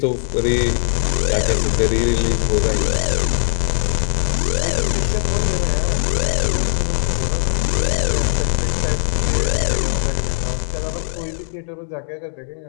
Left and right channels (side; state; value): right; silent; digital silence